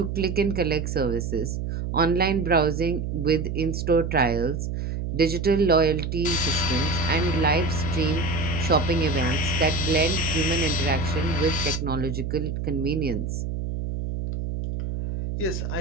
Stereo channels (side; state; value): right; noise; hum, 3 dB below the sound